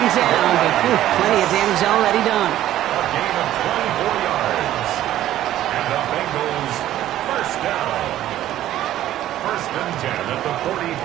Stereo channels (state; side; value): quieter; left; 13.1 dB